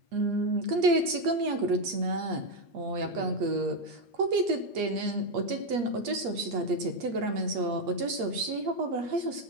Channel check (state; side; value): late; left; 8.5 ms